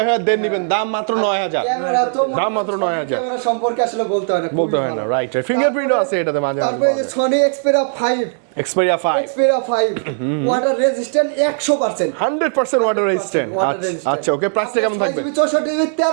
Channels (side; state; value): left; silent; 67 dB below the other